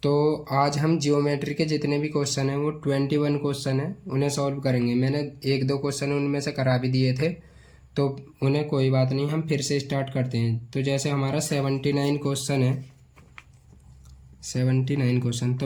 तो आज हम जियोमेट्री के जितने भी क्वेश्चन हैं वो 21 क्वेश्चन हैं, उन्हें सॉल्व करेंगे। मैंने एक दो क्वेश्चन उनमें से करा भी दिए थे, तो उन्हें कोई बात नहीं, हम फिर से स्टार्ट करते हैं। तो जैसे हमारा 79 क्वेश्चन है, 79 क्वेश्चन,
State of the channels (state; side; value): identical; both; correlation 1.00